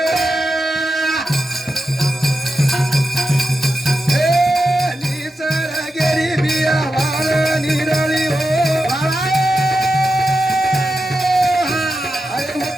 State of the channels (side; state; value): both; normal; correlation 0.89